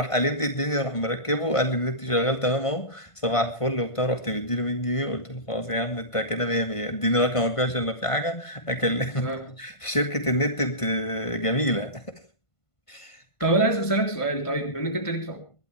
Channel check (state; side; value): late; right; 1.5 ms